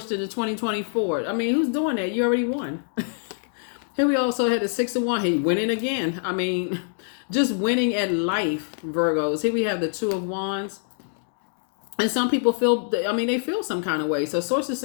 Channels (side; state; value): right; silent; digital silence